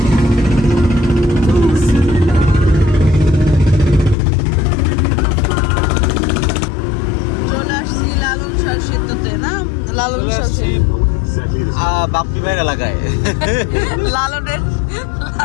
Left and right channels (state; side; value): drops out; right; at 4.2 s